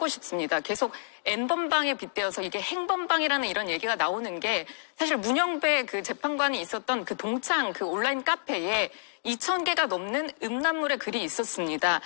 싶습니다. 계속 N번방에 빗대어서 이게 행번방이라는 이런 얘기가 나오는 게 사실 문영배 그 재판관이 있었던 그 동창 그 온라인 카페에 2,000개가 넘는 음란물의 글이 있었습니다.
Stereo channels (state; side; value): silent; right; digital silence